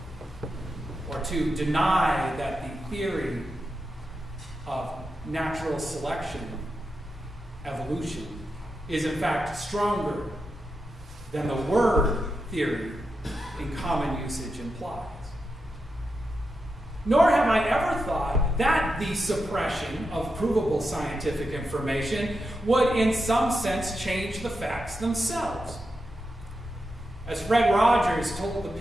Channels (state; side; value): normal; both; correlation 0.87